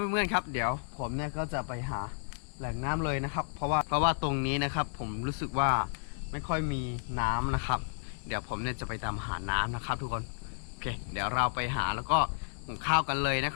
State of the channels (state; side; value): silent; right; digital silence